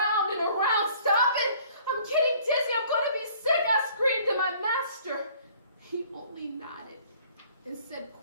and around. 'Stop it, I'm getting dizzy, I'm going to be sick,' I screamed at my master. He only nodded and said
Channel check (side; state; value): both; inverted; correlation -0.56